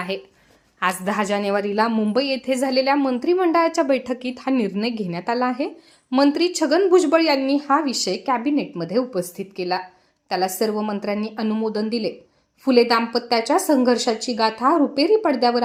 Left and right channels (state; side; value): identical; both; correlation 1.00